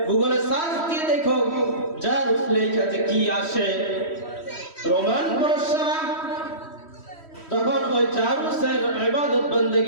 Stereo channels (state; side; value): late; right; 3.1 ms